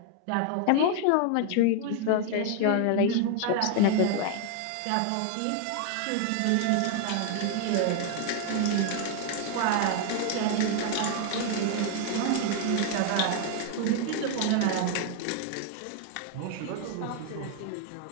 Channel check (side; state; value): both; different; correlation 0.00